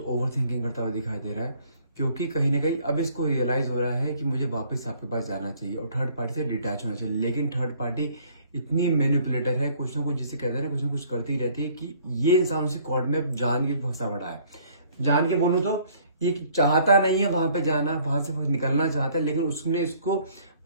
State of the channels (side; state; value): both; inverted; correlation -0.59